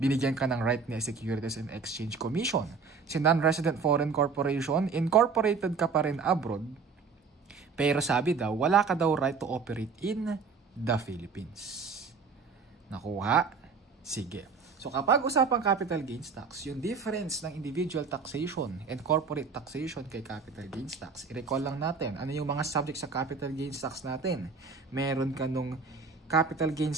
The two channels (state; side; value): quieter; left; 5.0 dB